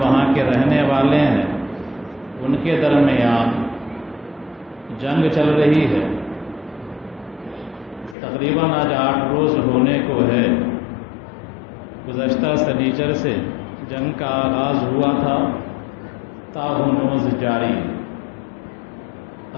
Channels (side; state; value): right; drops out; at 8.2 s